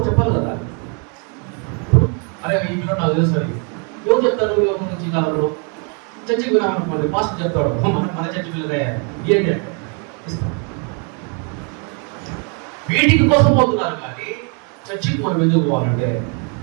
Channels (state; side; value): quieter; left; 37.5 dB